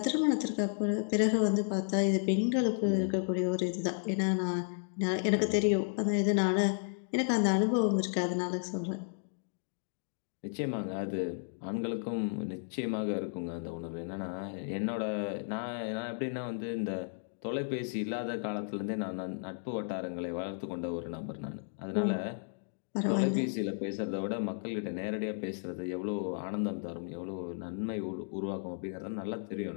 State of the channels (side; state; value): right; silent; digital silence